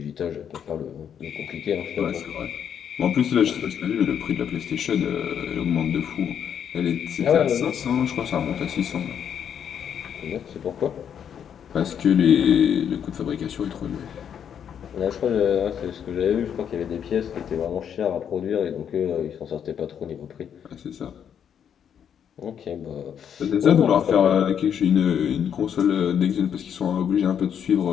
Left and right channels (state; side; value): quieter; right; 8.5 dB